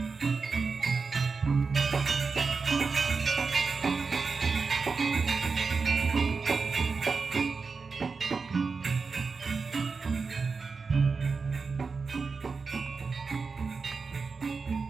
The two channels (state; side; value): quieter; left; 4.7 dB